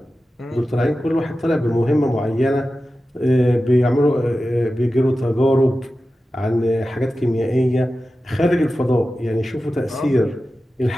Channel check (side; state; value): both; normal; correlation 0.94